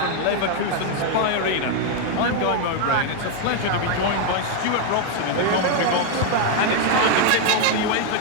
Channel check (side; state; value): both; different; correlation 0.01